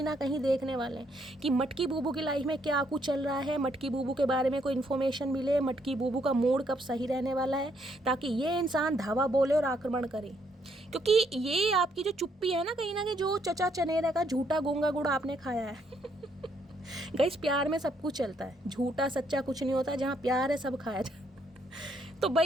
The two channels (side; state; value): both; normal; correlation 0.72